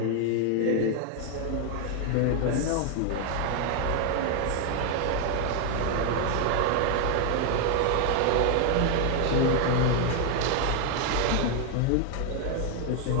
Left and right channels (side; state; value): both; different; correlation 0.01